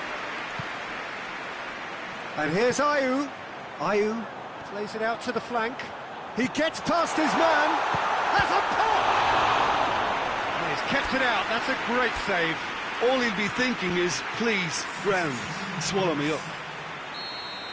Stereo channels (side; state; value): both; identical; correlation 1.00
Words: And here's Ayew. Ayew plays it out to the flank. He gets past his man. That's a pop! And he's kept it out. That's a great save. All he'll be thinking is, please, ground, swallow me up.